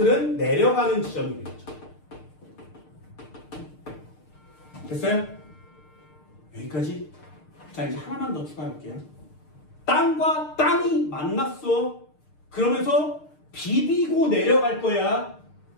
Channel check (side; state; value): right; late; 6.6 ms